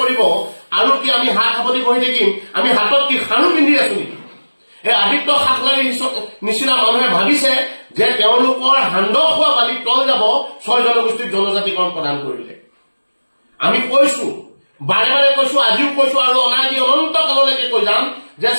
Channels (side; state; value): both; inverted; correlation -1.00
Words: কৰিব আৰু কি আমি সাৱধানে বহি থাকিম? আমি হাতত কি খাৰু পিন্ধি আছো নেকি? এই আদিত্য খাকলাৰীৰ নিচিনা মানুহে ভাবিছে যে তেওঁলোকৰ হান্দক হোৱা বালিত তল যাব 6 জনগোষ্ঠীৰ জনজাতিকৰণ প্ৰদান কৰিলে। আমি কৈছো, বাৰে বাৰে কৈছো, আজিও কৈছো আৰু অনাদি অনন্ত কাললৈকে কৈ যাম যে